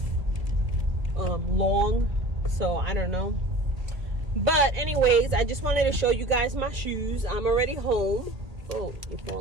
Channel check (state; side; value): late; left; 1.7 ms